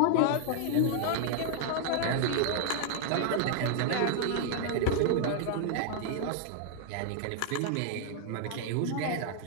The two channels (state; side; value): different; both; correlation 0.00